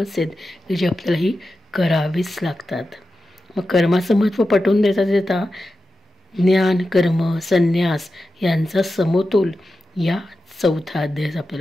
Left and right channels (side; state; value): both; normal; correlation 0.92